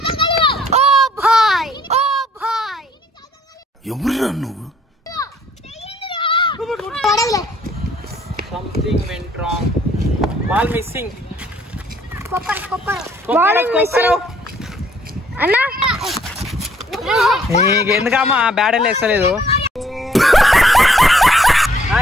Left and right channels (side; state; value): both; normal; correlation 0.63